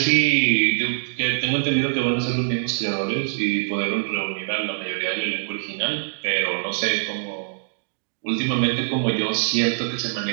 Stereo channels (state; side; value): silent; left; digital silence